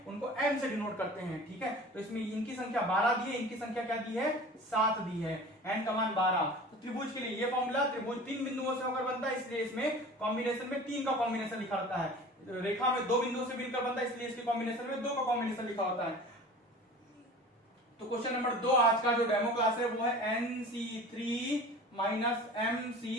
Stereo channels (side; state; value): both; normal; correlation 0.40